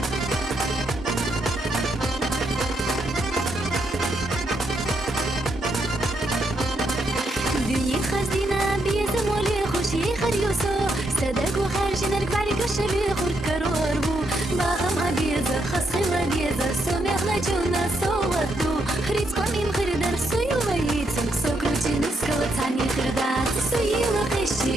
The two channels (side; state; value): both; normal; correlation 0.78